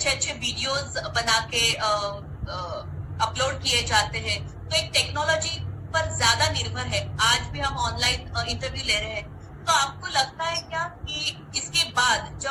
अच्छे वीडियोस बना के अपलोड किए जाते हैं, तो एक टेक्नोलॉजी पर ज्यादा निर्भर है। आज भी हम ऑनलाइन इंटरव्यू ले रहे हैं, तो आपको लगता है क्या कि इसके बाद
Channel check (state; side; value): identical; both; correlation 1.00